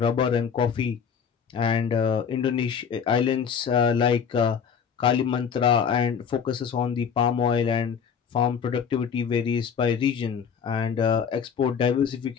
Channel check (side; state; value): right; quieter; 7.0 dB